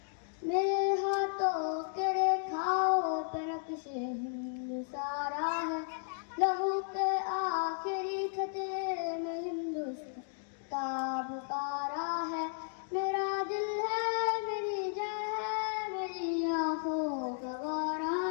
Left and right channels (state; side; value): silent; right; digital silence